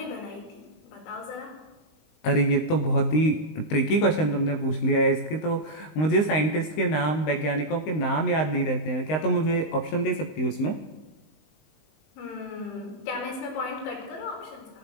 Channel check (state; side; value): late; right; 19 ms